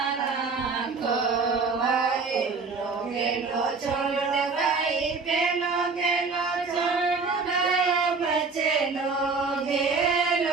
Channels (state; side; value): quieter; left; 4.5 dB